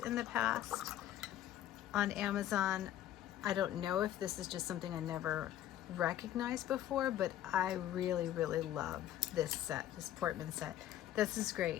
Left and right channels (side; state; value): right; quieter; 12.2 dB